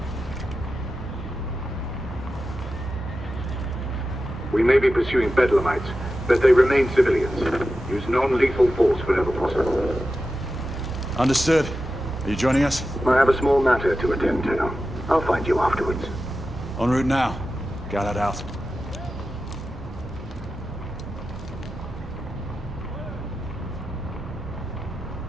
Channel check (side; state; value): both; normal; correlation 0.92